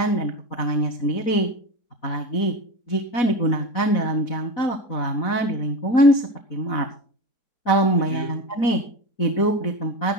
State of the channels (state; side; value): late; right; 4.1 ms